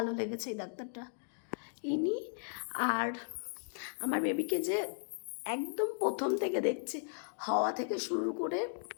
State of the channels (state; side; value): silent; right; digital silence